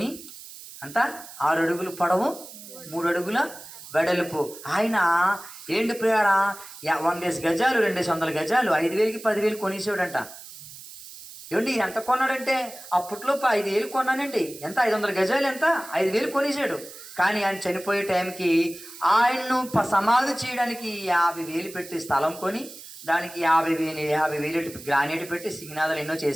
అంతా 6 అడుగులు పొడవు, 3 అడుగుల వెడల్పు. ఆయన ప్రియరా 100 గజాలు, 200 గజాలు 5,000కి 10,000 కొనేసాడంట. ఎంత కొన్నాడంటే అప్పట్లో 5,000 కొన్నానండి. ఎంత? 500 గజాలు ఎంత? 5,000 కొనేసాడు. కానీ ఆయన చనిపోయే టైంకి ఆయన్ను సమాధి చేయడానికి 50,000 పెట్టి స్థలం కొని, దానికి 50,000 గ్రానైట్ పెట్టి సిగ్నాదాలు ఎన్నో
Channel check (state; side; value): noise; right; hiss, 15 dB below the sound